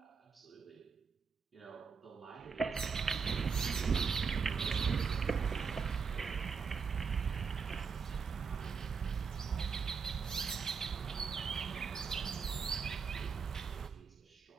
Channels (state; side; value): quieter; left; 5.7 dB